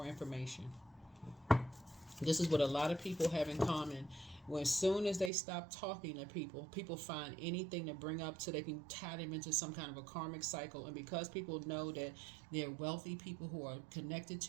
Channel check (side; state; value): left; drops out; at 5.3 s